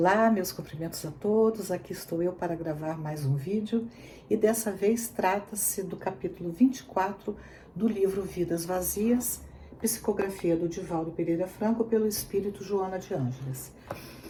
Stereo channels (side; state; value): both; identical; correlation 1.00